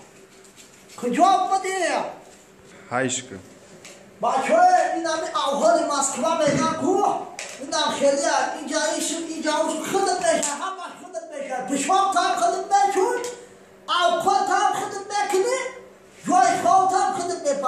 کجا بودی هایشکا بچه این همی اول مسکوه میگن کو این هم خیلی اینجا خودت میشه همش خودت میشه پشمام تا هم خودت میشون اوقات هم خودت میکنی جای خواه هم خودت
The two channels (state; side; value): identical; both; correlation 1.00